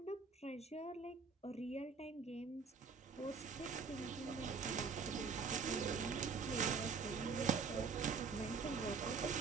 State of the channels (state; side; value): quieter; left; 5.3 dB